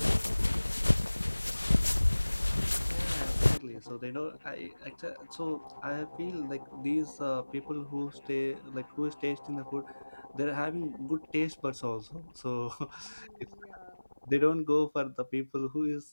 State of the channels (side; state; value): both; inverted; correlation -1.00